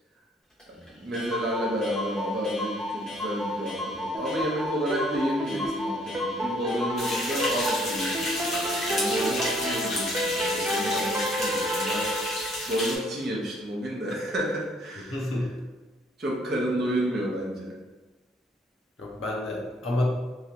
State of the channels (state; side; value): normal; both; correlation 0.63